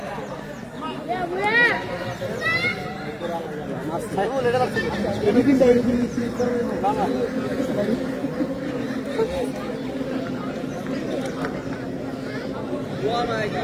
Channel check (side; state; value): both; identical; correlation 1.00